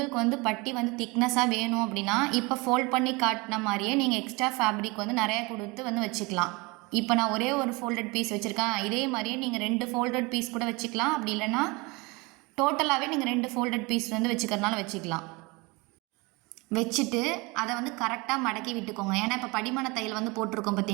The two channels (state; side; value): quieter; left; 25.9 dB